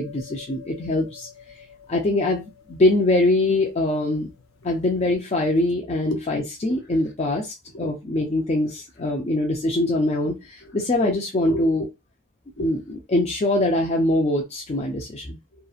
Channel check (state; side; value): normal; both; correlation 0.51